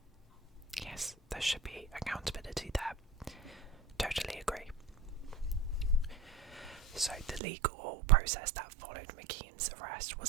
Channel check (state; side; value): drops out; left; at 7.4 s